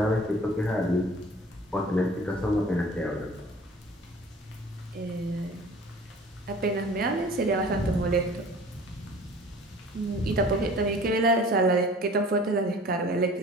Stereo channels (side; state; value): both; normal; correlation 0.46